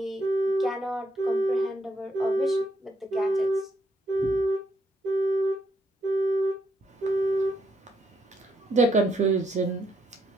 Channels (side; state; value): both; normal; correlation 0.75